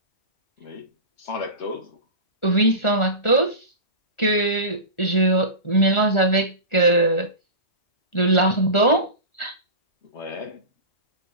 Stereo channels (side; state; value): right; late; 1.4 ms